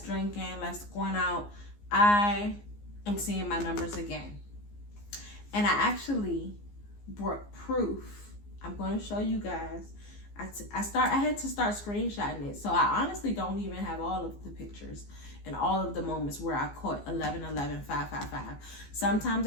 drinking, less going out, I am seeing my numbers again. And I actually brought proof. I'm going to show you guys. I had to start screenshotting it. So I honestly don't even have all of the pictures and all of the moments where I caught 11 11 5 5 5. Sometimes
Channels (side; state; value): right; late; 15 ms